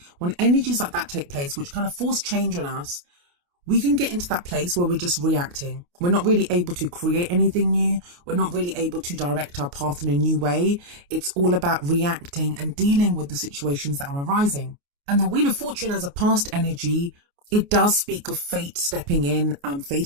When energies like that take place, which kind of force change on us, we can get into that place where we're just reacting. We're not really able to create anything new. We're not really able to direct our path in a new way. It's all about reacting and dealing with the situations that are arising. And the Wheel of Fortune as a past energy, it does speak of fate stepping in,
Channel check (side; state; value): left; late; 28 ms